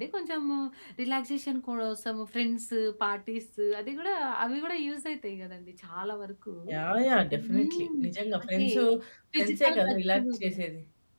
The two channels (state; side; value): inverted; both; correlation -1.00